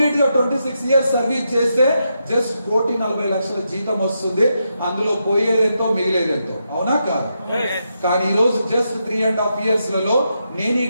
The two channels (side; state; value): both; inverted; correlation -0.84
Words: గా 26 ఇయర్స్ సర్వీస్ చేస్తే జస్ట్ 1,40,00,000 జీతం వస్తుంది. అందులో పోయేదెంతో మిగిలేదెంతో, అవునా కాదు? కానీ ఈ రోజు జస్ట్ 3.5 ఇయర్స్ లలో నేను ఈ